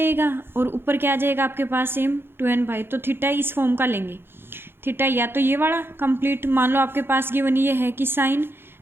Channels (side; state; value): left; late; 0.11 ms